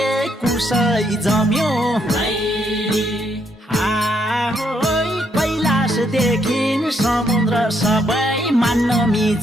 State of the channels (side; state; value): both; normal; correlation 0.74